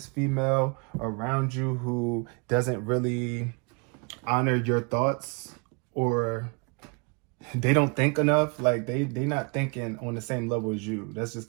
female around you who doesn't really honor your thoughts, or they don't think enough. Like they not thinking on the same level as you. That's just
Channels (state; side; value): quieter; left; 33.8 dB